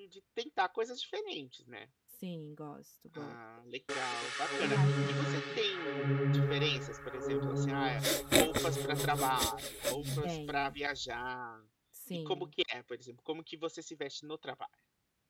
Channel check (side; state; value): both; identical; correlation 1.00